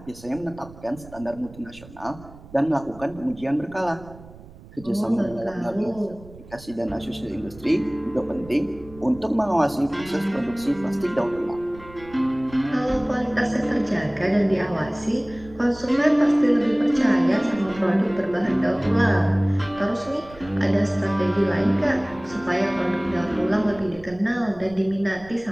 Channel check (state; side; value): noise; right; rumble, 20 dB below the sound